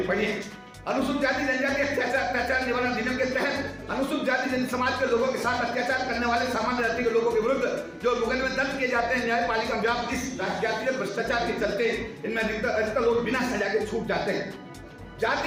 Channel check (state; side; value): identical; both; correlation 1.00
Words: पड़ी है। अनुसूचित जाति जनजाति अत्याचार निवारण अधिनियम के तहत अनुसूचित जाति जनजाति समाज के लोगों के साथ अत्याचार करने वाले सामान्य जाति के लोगों के विरुद्ध जो मुकदमे दर्ज किए जाते हैं न्यायपालिका व्याप्त इस जातिगत भ्रष्टाचार के चलते इनमें अधिकतर लोग बिना सजा के छूट जाते हैं।